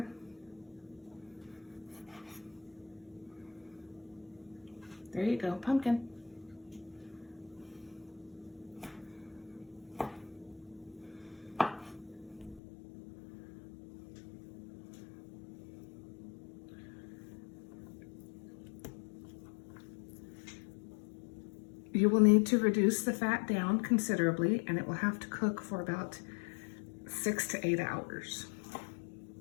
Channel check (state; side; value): drops out; right; at 12.6 s